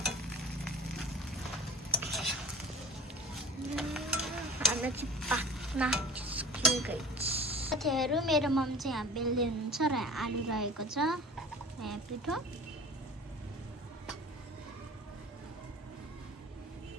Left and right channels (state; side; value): normal; both; correlation 0.41